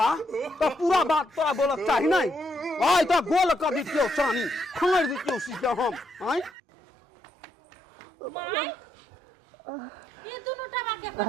तो पूरा बात तोरा बोलक चाही नहीं आई तो गोल कर दितियो चानी खंगड़ दितियो सीधा हम आई माय ये दोनों टबा के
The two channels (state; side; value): drops out; left; at 6.5 s